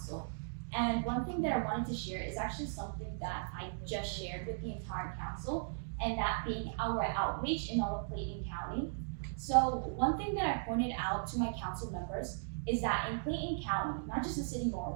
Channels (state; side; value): silent; left; digital silence